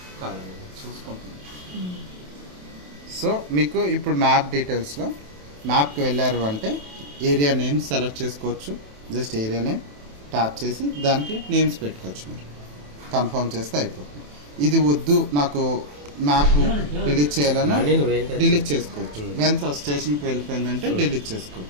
చూసుకుంటుంది. సో మీకు ఇప్పుడు మ్యాప్ డీటెయిల్స్లో మ్యాప్కి వెళ్ళారు అంటే ఏరియా నేమ్ సెలెక్ట్ చేసుకోవచ్చు. జస్ట్ ఏరియా నేమ్ ట్యాప్ చేసి దానికి నేమ్స్ పెట్టుకోవచ్చు. మీరు కన్ఫర్మ్ చేస్తే అయిపోతుంది. ఇది వద్దు నాకు మ్యాప్ డిలీట్ చేయాలన్నా డిలీట్ చేసుకోవచ్చు. వెన్స్ స్టేషన్కి వెళ్ళిపోయిందంటే డిలీట్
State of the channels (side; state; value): left; late; 27 ms